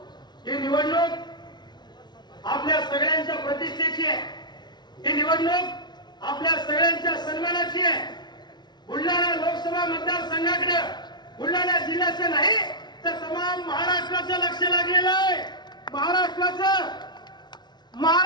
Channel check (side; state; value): right; late; 0.20 ms